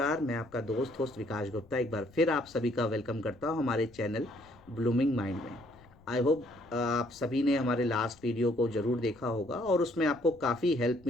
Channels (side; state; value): left; noise; rumble, 26 dB below the sound